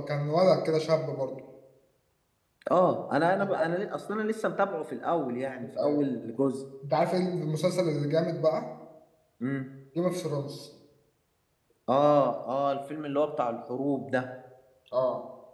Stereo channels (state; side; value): identical; both; correlation 1.00